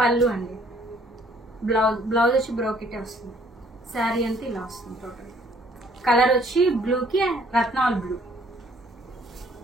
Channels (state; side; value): normal; both; correlation 0.61